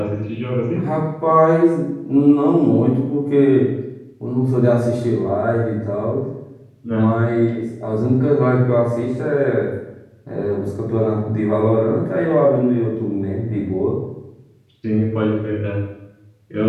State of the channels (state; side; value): identical; both; correlation 1.00